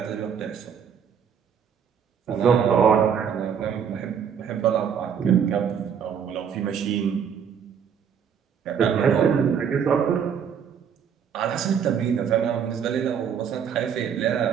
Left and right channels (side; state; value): left; quieter; 7.6 dB